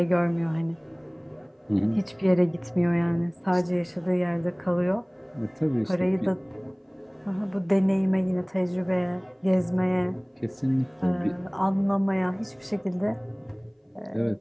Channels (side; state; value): both; identical; correlation 1.00